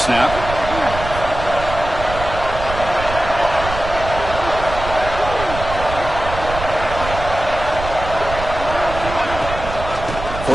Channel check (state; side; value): noise; right; rumble, 8 dB below the sound